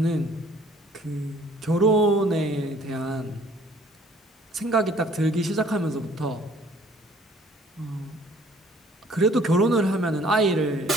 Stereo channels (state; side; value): normal; both; correlation 0.57